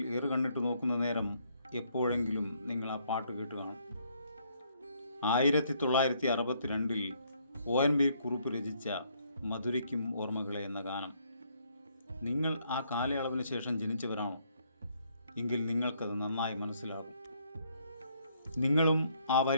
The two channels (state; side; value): inverted; both; correlation -0.69